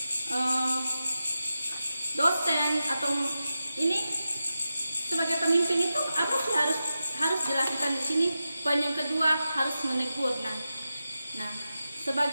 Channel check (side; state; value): both; inverted; correlation -0.91